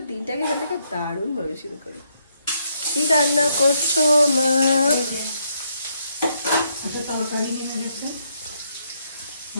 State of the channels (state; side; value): inverted; both; correlation -0.75